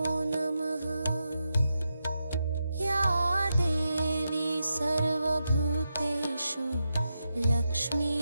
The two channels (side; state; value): both; inverted; correlation -0.87